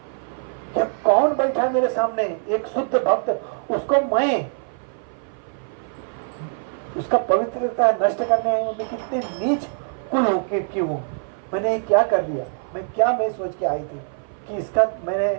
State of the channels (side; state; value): left; silent; 56 dB below the other